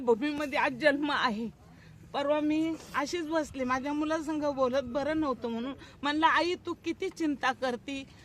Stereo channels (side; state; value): both; identical; correlation 1.00